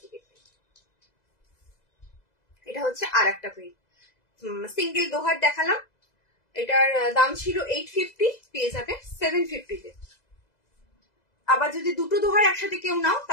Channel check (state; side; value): late; right; 2.0 ms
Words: দিকে প্রিন্ট। এটা হচ্ছে আর একটা প্রিন্ট। সিঙ্গেল দোহার দেখালাম, এটার দাম ছিল 850, পেয়ে যাবে 750 তে। আবার যদি দুটো দোহার একসাথে কেউ নাও